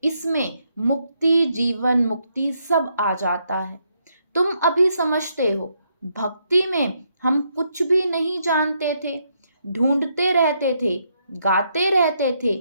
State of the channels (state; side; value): inverted; both; correlation -0.76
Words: इसमें मुक्ति, जीवन मुक्ति सब आ जाता है। तुम अभी समझते हो, भक्ति में हम कुछ भी नहीं जानते थे, ढूंढते रहते थे, गाते रहते थे